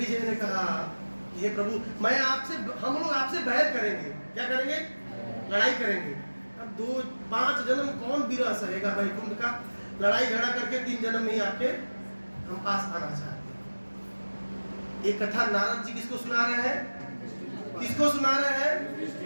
ने कहा, हे प्रभु, मैं आपसे, हम लोग आपसे बैर करेंगे। क्या करेंगे? लड़ाई करेंगे। अब 5 जन्म कौन विरह सहेगा वैकुंठ का? लड़ाई झगड़ा करके 3 जन्म में ही आपके हम पास आना चाहते हैं। एक कथा नारद जी किसको सुना रहे हैं? किसको सुना रहे हैं?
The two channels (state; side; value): inverted; both; correlation -1.00